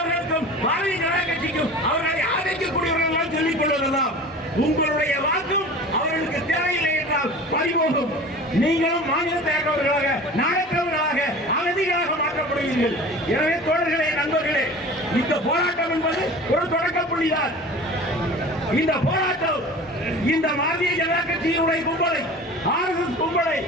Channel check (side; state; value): both; normal; correlation 0.39